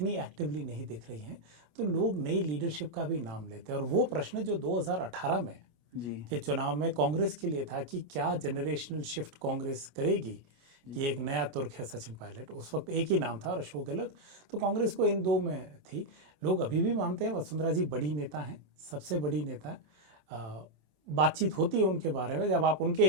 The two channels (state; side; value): late; left; 27 ms